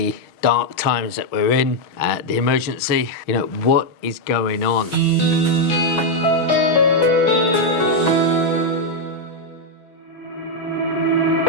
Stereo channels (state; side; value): late; right; 6.2 ms